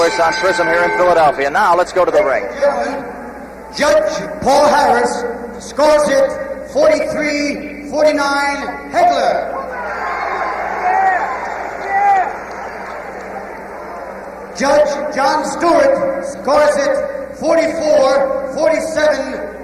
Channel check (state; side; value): identical; both; correlation 1.00